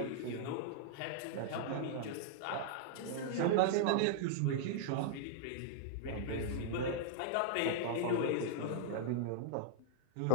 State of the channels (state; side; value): different; both; correlation -0.01